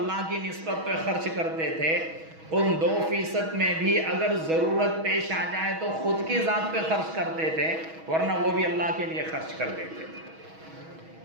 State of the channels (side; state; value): left; late; 6.2 ms